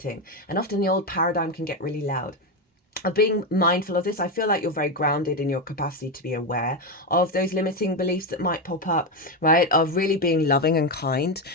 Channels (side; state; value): both; normal; correlation 0.10